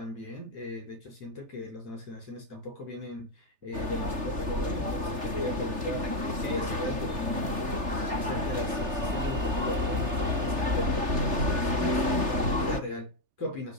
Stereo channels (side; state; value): left; late; 3.4 ms